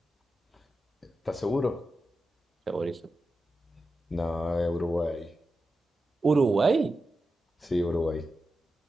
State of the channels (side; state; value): both; normal; correlation 0.91